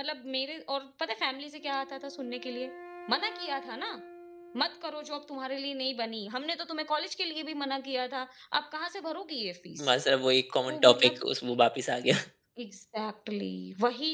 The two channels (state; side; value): identical; both; correlation 1.00